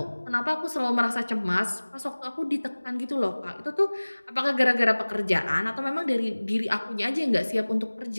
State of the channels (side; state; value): both; inverted; correlation -1.00